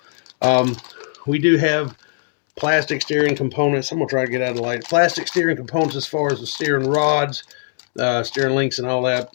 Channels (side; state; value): right; silent; digital silence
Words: We do have plastic steering components. I'm going to try to get out of the light. Plastic steering components as far as the steering rods, steering links and all that.